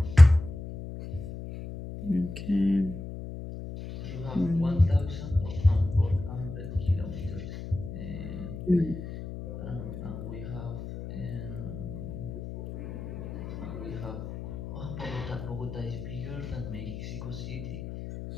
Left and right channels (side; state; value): left; noise; hum, 9 dB below the sound